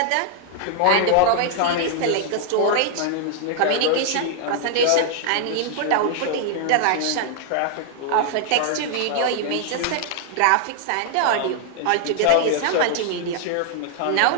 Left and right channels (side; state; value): both; different; correlation 0.00